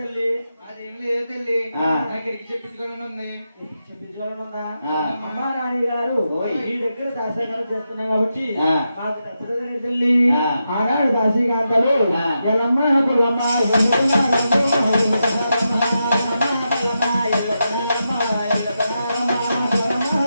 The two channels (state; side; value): inverted; both; correlation -0.87